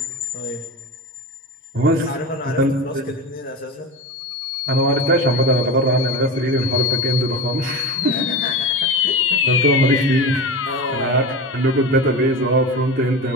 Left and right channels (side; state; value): both; normal; correlation 0.26